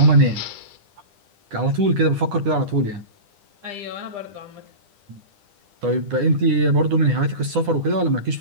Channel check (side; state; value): left; late; 10 ms